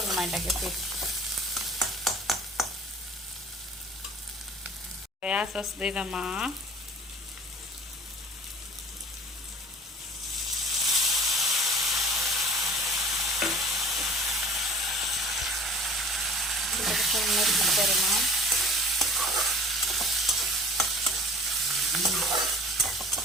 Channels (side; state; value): both; normal; correlation 0.46